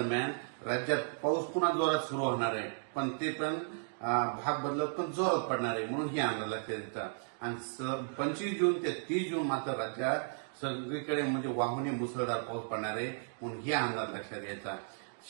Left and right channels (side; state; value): left; silent; digital silence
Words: राज्यात पाऊस पुन्हा जोरात सुरू होणार आहे. पण ते पण भाग बदलत पण जोरात पडणार आहे म्हणून ही अंदाज लक्षात येतात. आणि 25 जून ते 30 जून मात्र राज्यात सगळीकडे म्हणजे वाहुनी मुसळधार पाऊस पडणार आहे म्हणून हे अंदाज लक्षात घ्यायचा.